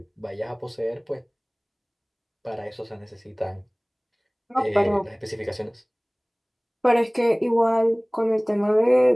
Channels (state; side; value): identical; both; correlation 1.00